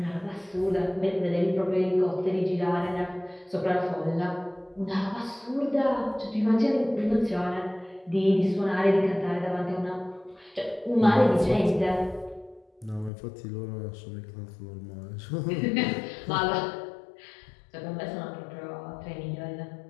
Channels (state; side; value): drops out; right; at 13.1 s